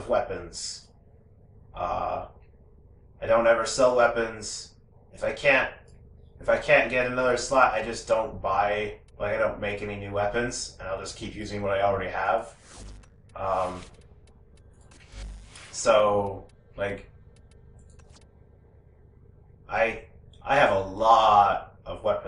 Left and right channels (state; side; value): identical; both; correlation 1.00